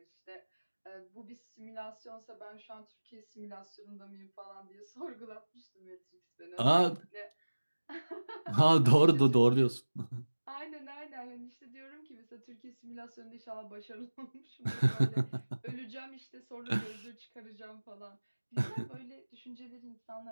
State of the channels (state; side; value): inverted; both; correlation -1.00